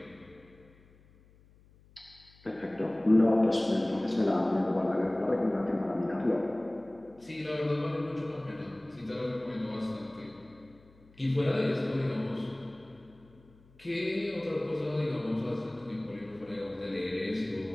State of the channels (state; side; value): noise; left; hum, 27 dB below the sound